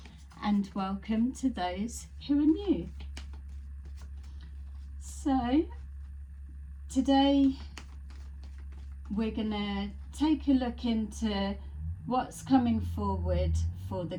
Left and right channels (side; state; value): both; identical; correlation 1.00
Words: and welcome to those who are new. So today we're gonna take a look into what's coming forward for the